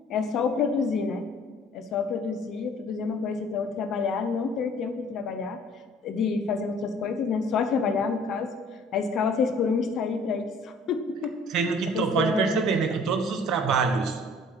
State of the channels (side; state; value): both; normal; correlation 0.53